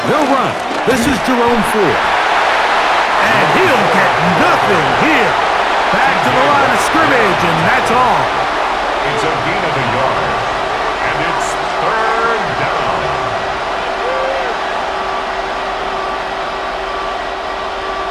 They'll run. This is Jerome Ford. And he'll get nothing here. Back to the line of scrimmage, and that's all. It's a gain of a yard, and it's third down.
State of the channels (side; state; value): both; identical; correlation 1.00